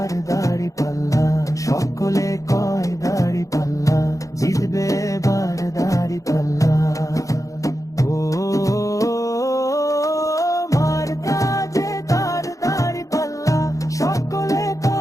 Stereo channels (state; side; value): late; right; 0.16 ms